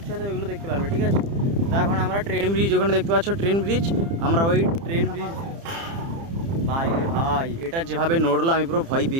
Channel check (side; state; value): left; late; 30 ms